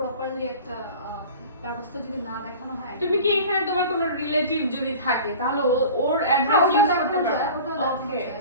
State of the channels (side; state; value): both; inverted; correlation -0.39